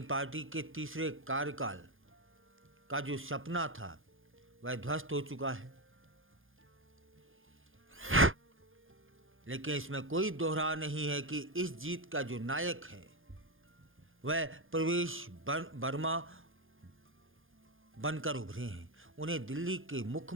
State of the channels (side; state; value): left; late; 0.59 ms